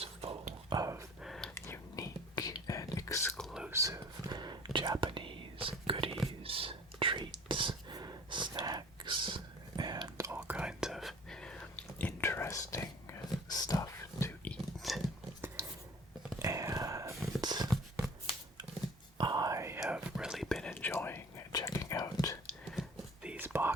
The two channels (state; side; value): normal; both; correlation 0.46